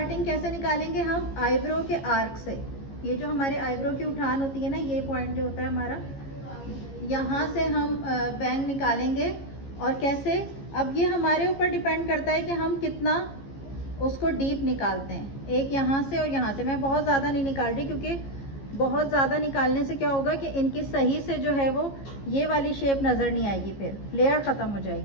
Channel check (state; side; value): late; right; 15 ms